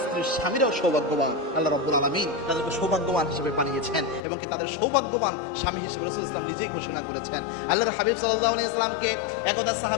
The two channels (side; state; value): right; drops out; at 4.2 s